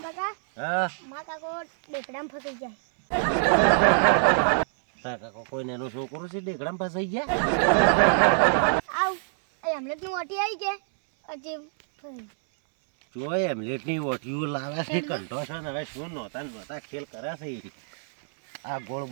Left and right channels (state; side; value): silent; left; 61 dB below the other